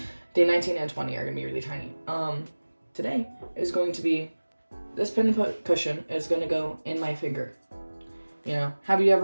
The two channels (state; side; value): inverted; both; correlation -1.00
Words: Day 19 and 20 are gonna be really tiny. Today is going to be, this pin cushion is gonna go in my finger. You know, have you